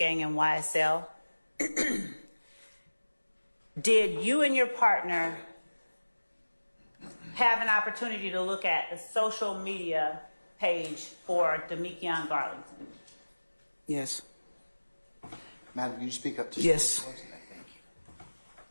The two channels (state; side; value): inverted; both; correlation -1.00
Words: and YSL, did you and your partner have an opportunity to look at the social media page for Demekion Garlington? Yes. Madam, can you speak up to Yes. Thank